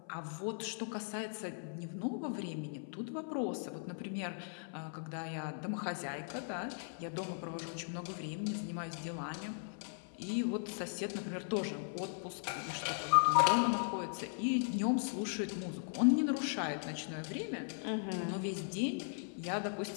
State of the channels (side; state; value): right; silent; 52 dB below the other